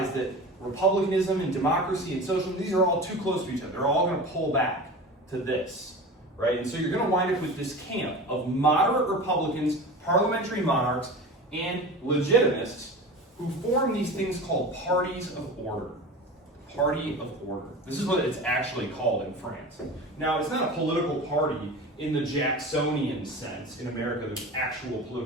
that republicanism and democracy and socialism, these are all too close to each other. They're all going to pull back to this, right? And so you're going to wind up with this camp of moderate Republicans, parliamentary monarchs, and legitimists who form these things called parties of order. Party of order. This is what it's actually called in France. Now, it's not a political party in the Jacksonian sense. In America, there's actual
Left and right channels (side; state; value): both; normal; correlation 0.32